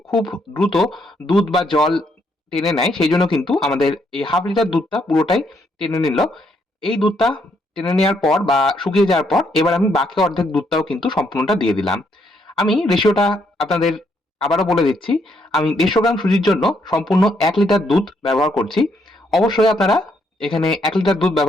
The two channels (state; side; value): normal; both; correlation 0.74